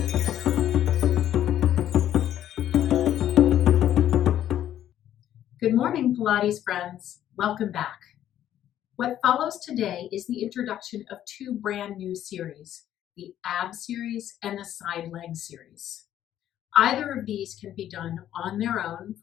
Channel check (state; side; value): quieter; right; 11.4 dB